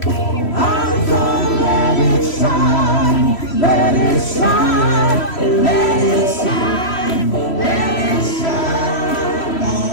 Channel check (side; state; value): right; late; 3.1 ms